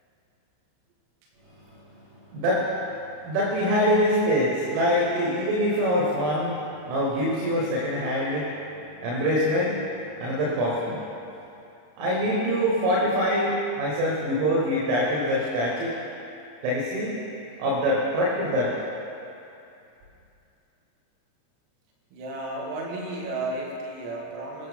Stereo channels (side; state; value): left; late; 33 ms